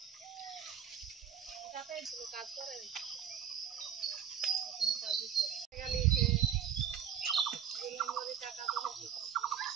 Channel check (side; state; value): left; quieter; 8.8 dB